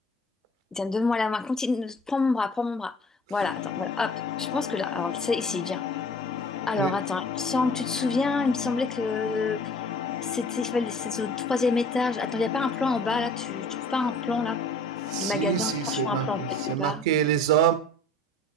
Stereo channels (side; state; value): both; normal; correlation 0.48